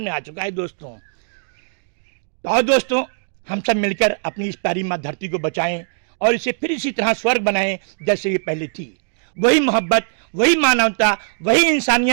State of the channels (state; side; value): silent; left; digital silence